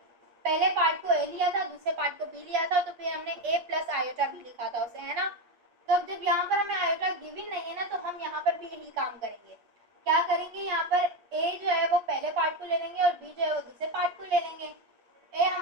पहले पार्ट को ए लिया था, दूसरे पार्ट को बी लिया था, तो फिर हमने ए प्लस आयोटा भी लिखा था उसे, है ना। तो अब जब यहाँ पर हमें आयोटा गिवन नहीं है ना, तो हम यहाँ पर भी यही काम करेंगे। क्या करेंगे, यहाँ पर ए जो है वो पहले पार्ट को ले लेंगे और बी जो है वो दूसरे पार्ट को ले लेंगे। ए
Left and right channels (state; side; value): late; left; 8.5 ms